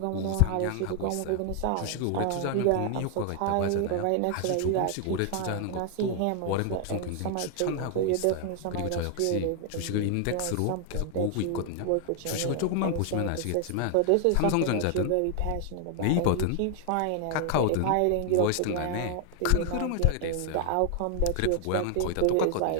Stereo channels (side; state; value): both; different; correlation 0.00